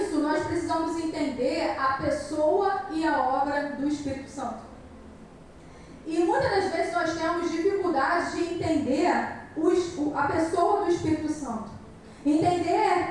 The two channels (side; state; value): both; identical; correlation 1.00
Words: nós precisamos entender a pessoa e a obra do Espírito Santo. E muitas das vezes nós temos dificuldade de entender a pessoa do Espírito Santo. Entender